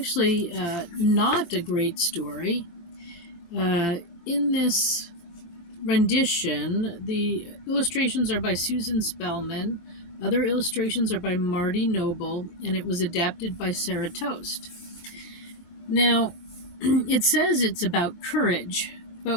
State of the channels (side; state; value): right; late; 23 ms